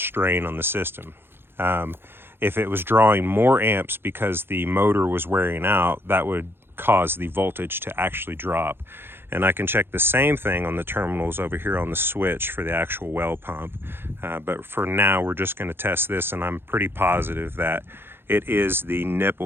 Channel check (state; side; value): late; left; 0.11 ms